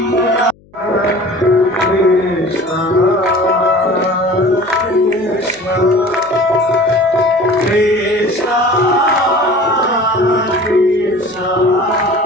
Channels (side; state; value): left; noise; hum, 29 dB below the sound